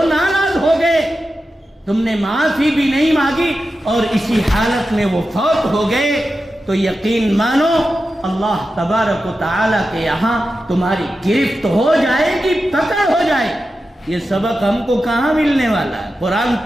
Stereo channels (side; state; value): both; normal; correlation 0.91